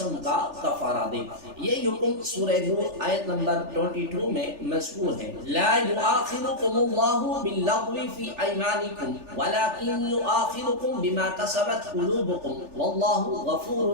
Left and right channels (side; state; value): left; late; 3.4 ms